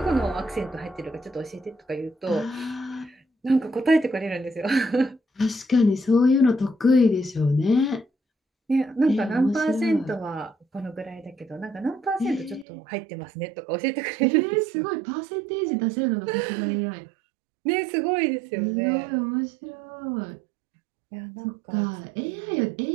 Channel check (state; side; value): drops out; left; at 12.7 s